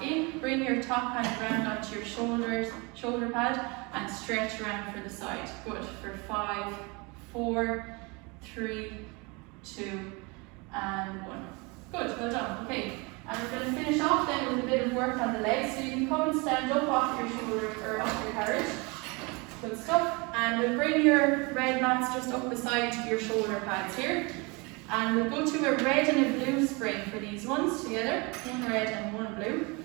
in. Bring your top hand round onto your shoulder pad, and stretch around for the side. Good. For 5, 4, 3, 2, and 1. Good, well done. Okay, and we're going to finish off then with a bit of work on the legs. So you can come and stand up off your shoulder or off your carriage. Good stuff. And we'll bring your red mats just up beside your shoulder pads here. And we'll go to a red and a blue spring for these ones together. 1 red and 1 blue.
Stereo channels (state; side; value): quieter; left; 28.2 dB